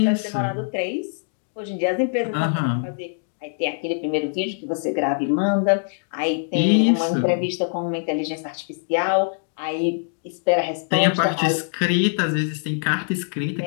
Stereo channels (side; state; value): right; silent; digital silence